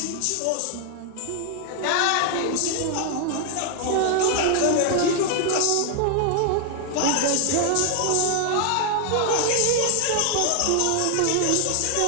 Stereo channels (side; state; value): both; different; correlation 0.00